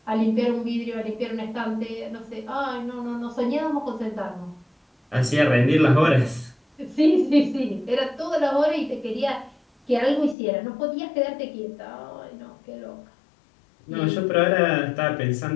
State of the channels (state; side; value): drops out; right; at 10.4 s